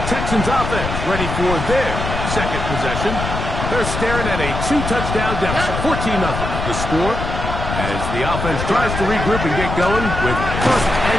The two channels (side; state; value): left; noise; rumble, 4 dB below the sound